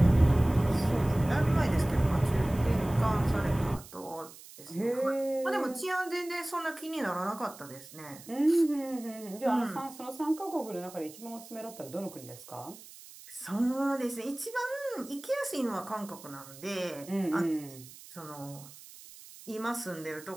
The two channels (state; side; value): noise; right; hiss, 18 dB below the sound